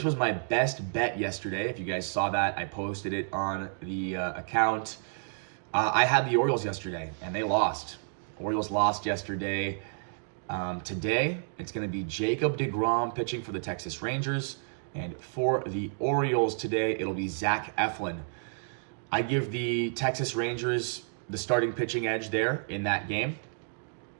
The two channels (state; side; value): silent; left; digital silence